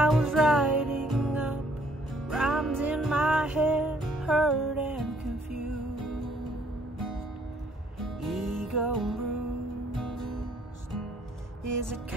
was writing up rhymes in my head, hurt and confused, ego bruised. Is it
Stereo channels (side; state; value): both; normal; correlation 0.64